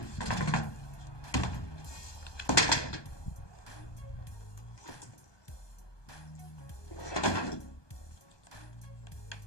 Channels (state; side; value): late; right; 1.2 ms